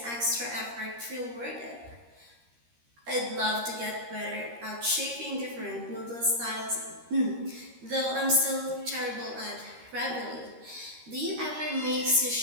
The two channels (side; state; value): left; late; 13 ms